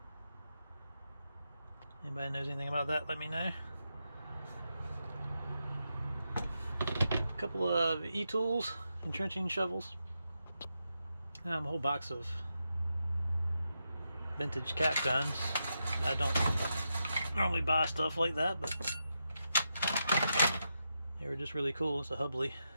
Anybody knows anything about that, let me know. A couple of e-tools, entrenching shovels. A whole box of vintage cap guns. I don't normally buy stuff like that, but they were just really cool. It's a Hubley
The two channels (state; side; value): inverted; both; correlation -0.86